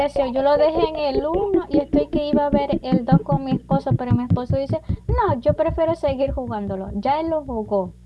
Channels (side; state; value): both; identical; correlation 1.00